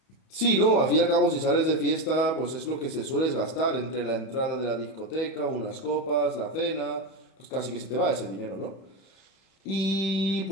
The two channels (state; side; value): late; right; 31 ms